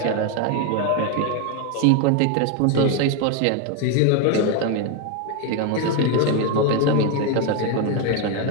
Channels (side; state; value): both; different; correlation 0.01